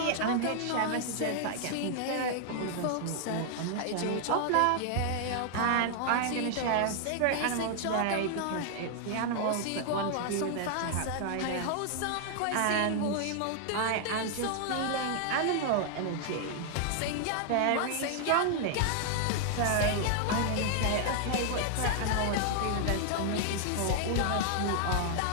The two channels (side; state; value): both; different; correlation 0.00